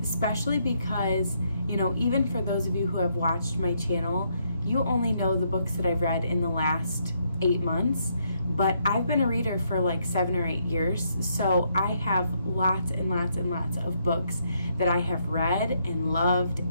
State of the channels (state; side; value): inverted; both; correlation -0.74